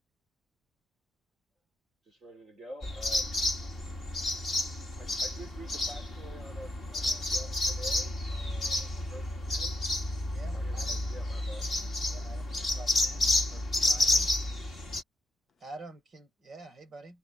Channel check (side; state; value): both; normal; correlation 0.81